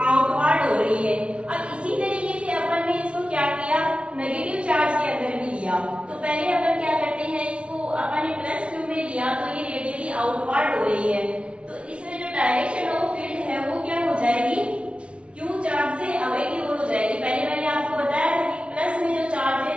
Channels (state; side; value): late; left; 0.060 ms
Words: आउटवर्ड हो रही है। अब इसी तरीके से अपन ने इसको क्या किया, नेगेटिव चार्ज के अंदर भी लिया। तो पहले अपन क्या करते हैं, इसको अपन ने प्लस क्यू में लिया तो ये रेडियली आउटवर्ड हो रही है। तो इसमें जो डायरेक्शन ऑफ फील्ड है वो क्या हो जाएगी, क्यू चार्ज से अवे की ओर हो जाएगी। पहले मैंने आपको बताया था कि प्लस में जो चार्ज है,